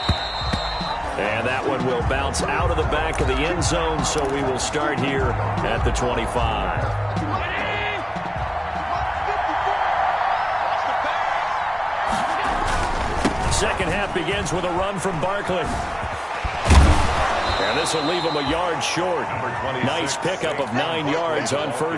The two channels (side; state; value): both; identical; correlation 1.00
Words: And that one will bounce out of the back of the end zone, so we will start here at the 25. Second half begins with a run from Barkley. And this will leave him a yard short. Nice pickup of 9 yards on